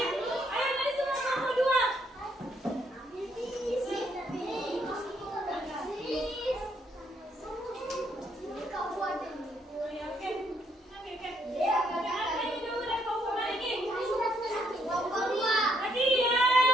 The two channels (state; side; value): normal; both; correlation 0.72